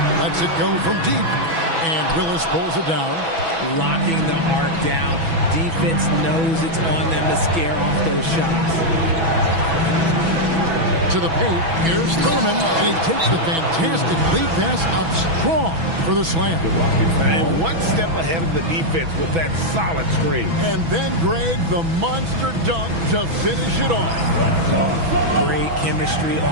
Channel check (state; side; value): late; left; 6.1 ms